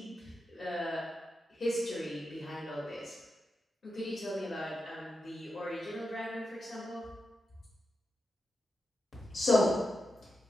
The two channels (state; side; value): normal; both; correlation 0.88